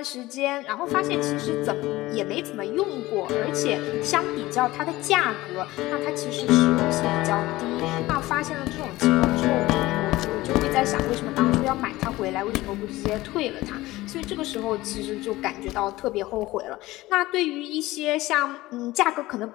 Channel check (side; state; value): right; quieter; 18.3 dB